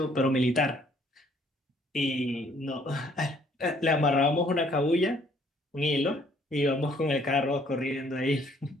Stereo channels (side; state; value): both; normal; correlation 0.62